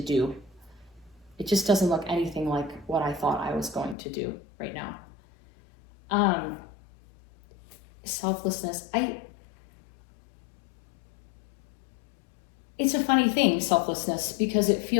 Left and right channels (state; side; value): drops out; right; at 4.0 s